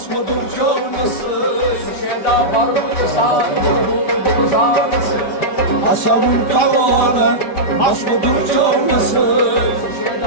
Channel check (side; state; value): right; late; 5.1 ms